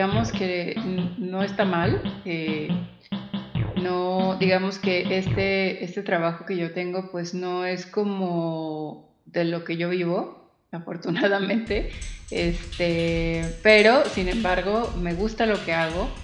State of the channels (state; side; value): identical; both; correlation 1.00